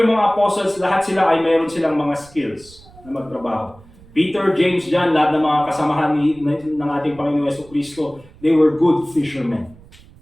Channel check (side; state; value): right; noise; rumble, 24 dB below the sound